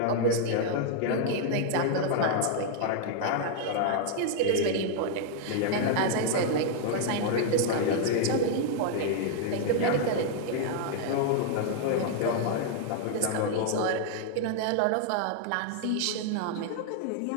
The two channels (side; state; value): both; different; correlation 0.00